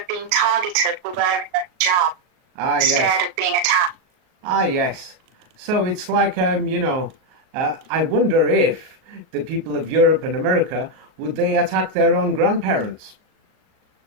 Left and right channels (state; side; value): late; left; 38 ms